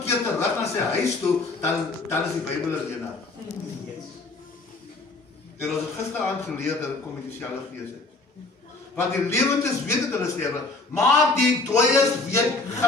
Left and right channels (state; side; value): quieter; right; 3.4 dB